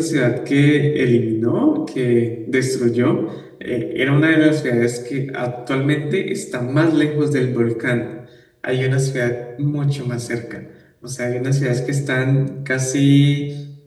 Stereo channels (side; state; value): both; identical; correlation 1.00